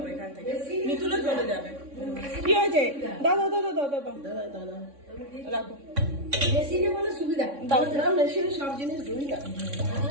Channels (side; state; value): left; late; 3.6 ms